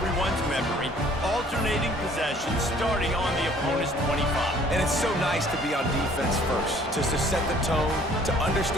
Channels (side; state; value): both; normal; correlation 0.57